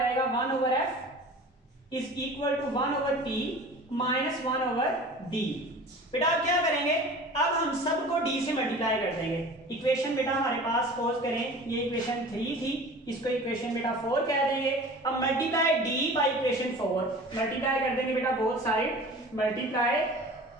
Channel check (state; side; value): normal; both; correlation 0.40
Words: 1 over F is equal to 1 over P minus 1 over D. बेटा अब क्या करेंगे, अब हम सबको d से मल्टीप्लाई कर देंगे। इक्वेशन बेटा हमारे पास सपोज करें ये इक्वेशन 3 थी, इसको इक्वेशन बेटा 4 कह देंगे। अब multiply d by equation 4, multiply कर देंगे बेटा both side, multiply